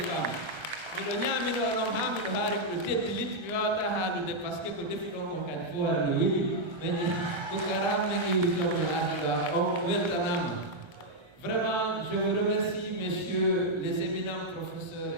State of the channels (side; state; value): left; late; 1.3 ms